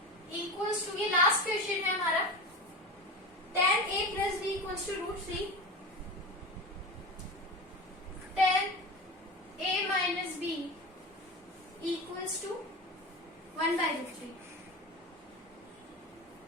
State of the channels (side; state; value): both; normal; correlation 0.27